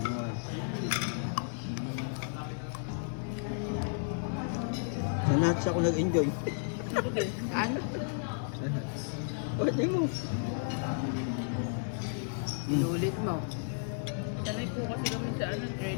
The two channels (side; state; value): right; silent; digital silence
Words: Sa nuts ako nag-enjoy. Ano? Pwede mo. Inulit mo. Sanay po kasi kami sa